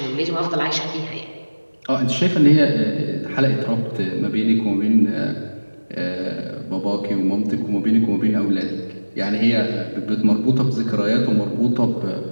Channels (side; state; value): both; inverted; correlation -1.00